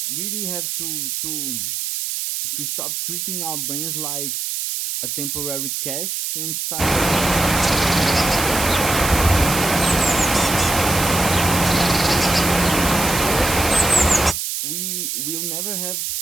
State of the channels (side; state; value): right; noise; hiss, 3 dB below the sound